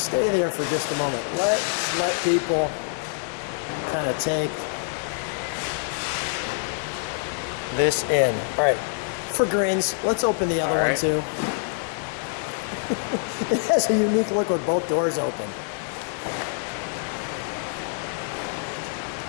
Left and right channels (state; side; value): silent; right; digital silence